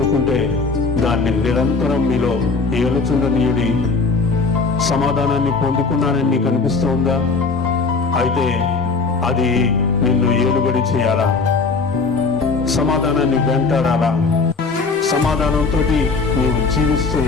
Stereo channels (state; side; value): quieter; right; 4.3 dB